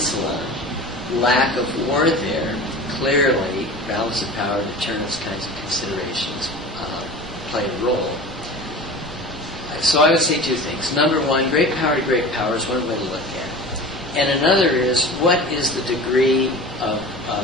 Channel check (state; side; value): normal; both; correlation 0.35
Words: lack of war there, clearly, balance of power, deterrence kinds of considerations play a role. So I would say two things. Number one, great power to great power is one way to look at it. And another is, what is the degree of